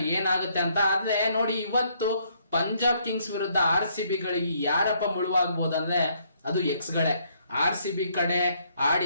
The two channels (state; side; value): inverted; both; correlation -0.69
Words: ಏನಾಗುತ್ತೆ ಅಂತ. ಆದ್ರೆ ನೋಡಿ, ಇವತ್ತು ಪಂಜಾಬ್ ಕಿಂಗ್ಸ್ ವಿರುದ್ಧ RCB ಗಳಿಗೆ ಯಾರಪ್ಪ ಮುಳುವಾಗಬಹುದು ಅಂದ್ರೆ ಅದು ಎಕ್ಸ್ ಗಳೇ. RCB ಕಡೆ